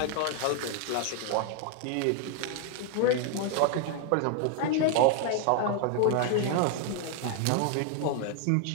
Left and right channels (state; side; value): different; both; correlation 0.00